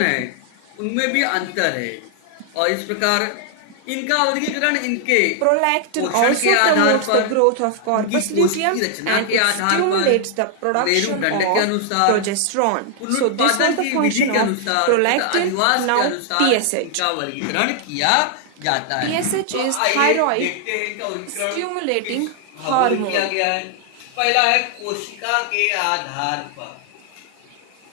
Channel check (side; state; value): both; different; correlation 0.00